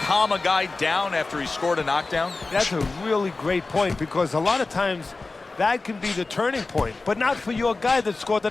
calm a guy down after he scored a knockdown? That's a really great point, because a lot of times that can be the turning point, but not for your guy that scored the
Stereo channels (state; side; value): quieter; right; 3.6 dB